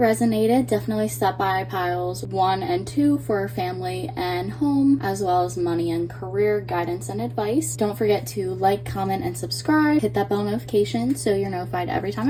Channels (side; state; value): both; identical; correlation 1.00